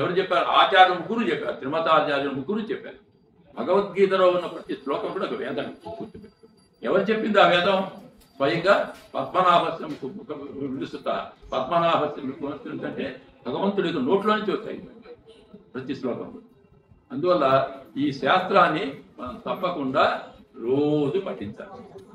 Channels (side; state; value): both; identical; correlation 1.00